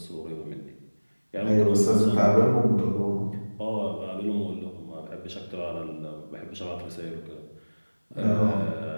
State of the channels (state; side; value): inverted; both; correlation -1.00